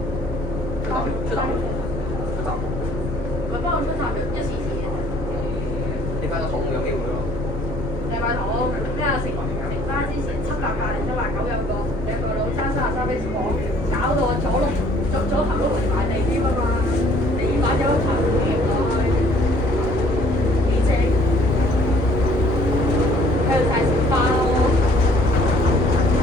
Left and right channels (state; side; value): normal; both; correlation 0.58